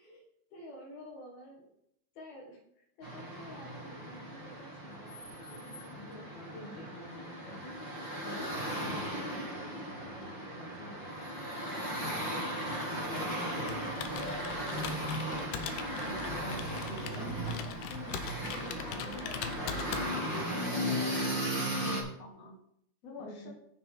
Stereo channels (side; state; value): right; late; 5.6 ms